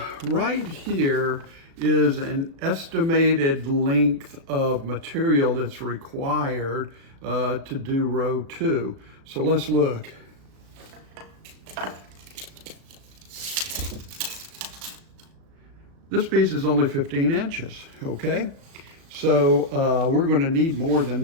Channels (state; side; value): late; left; 36 ms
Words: right here is an estimated length of material that's required to do row 2. So let's look. This piece is only 15 inches, okay? So So we're going to need more than